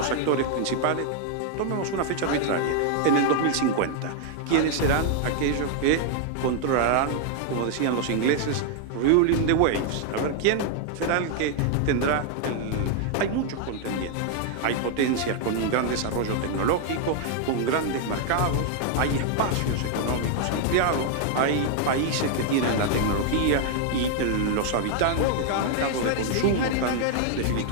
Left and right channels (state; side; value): different; both; correlation 0.00